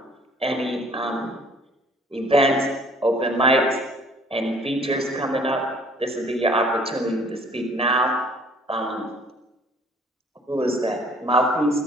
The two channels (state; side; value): normal; both; correlation 0.56